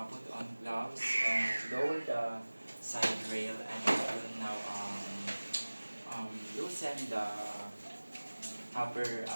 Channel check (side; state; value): both; inverted; correlation -1.00